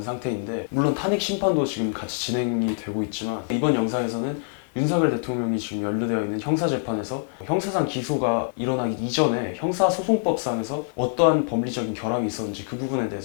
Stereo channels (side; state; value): right; silent; digital silence